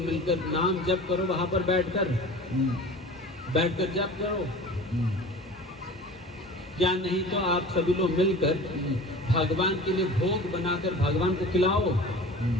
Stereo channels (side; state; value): both; normal; correlation 0.39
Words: मिलकर नाम जप करो, वहां पर बैठकर जप करो। या नहीं तो आप सभी लोग मिलकर भगवान के लिए भोग बनाकर भगवान को खिलाओ।